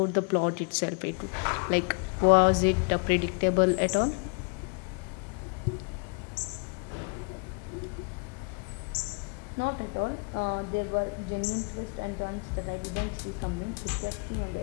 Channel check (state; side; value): quieter; right; 35.6 dB